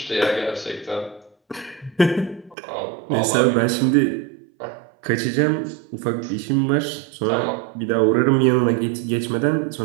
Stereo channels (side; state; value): left; drops out; at 2.6 s